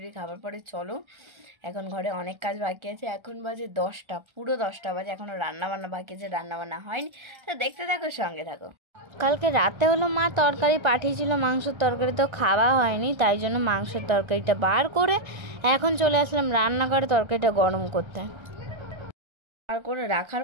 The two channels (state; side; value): late; left; 1.3 ms